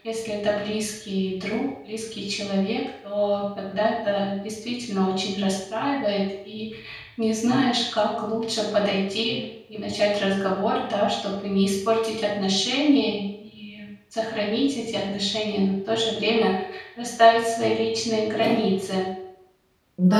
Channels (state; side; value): identical; both; correlation 1.00